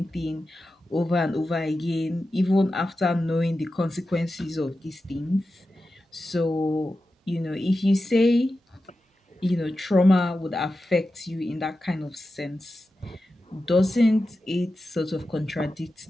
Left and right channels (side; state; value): both; normal; correlation 0.92